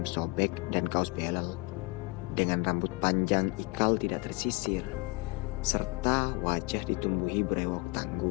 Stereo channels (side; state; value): right; quieter; 25.8 dB